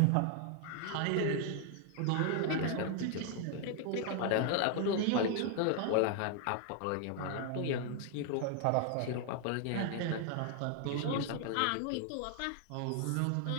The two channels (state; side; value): different; both; correlation 0.00